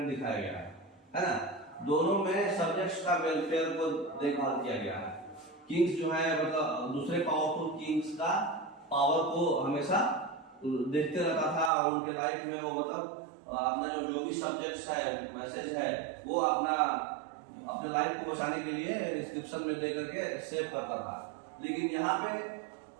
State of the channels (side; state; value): left; drops out; at 11.7 s